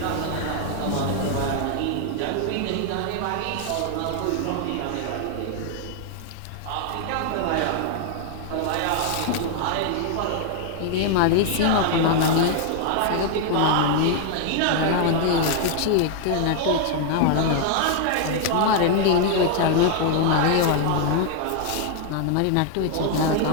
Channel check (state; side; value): different; both; correlation 0.00